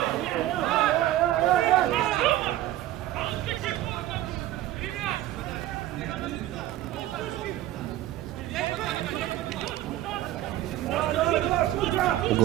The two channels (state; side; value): quieter; left; 14.2 dB